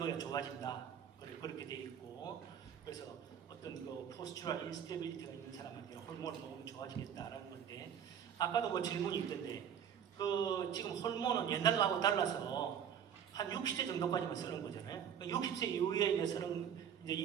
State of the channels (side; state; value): left; quieter; 8.6 dB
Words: 좋아진다. 그렇게 되어 있고, 그래서 어떤 그 포스추럴 인스테빌리티가 있는 사람한테 호르몬을 먹으면 좋아지겠다라는 건데, 아까도 뭐 질문이 있던데 그 지금 호르몬은 옛날하고 달라서 한 60세 정도까지만 쓰는 거잖아요. 60세 이후에 쓰는 이제